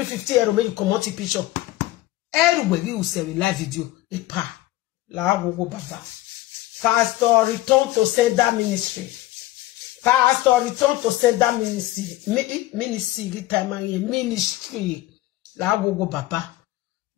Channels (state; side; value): quieter; right; 16.7 dB